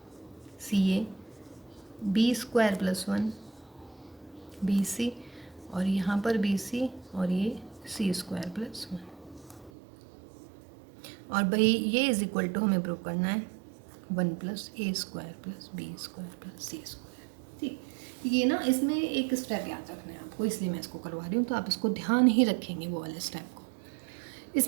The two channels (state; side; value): drops out; left; at 9.7 s